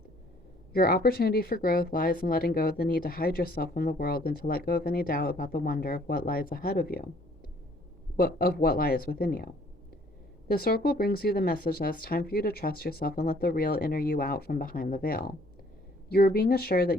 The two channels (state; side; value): normal; both; correlation 0.59